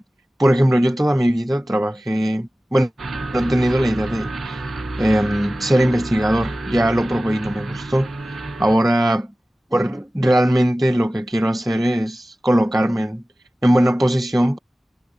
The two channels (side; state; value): both; normal; correlation 0.96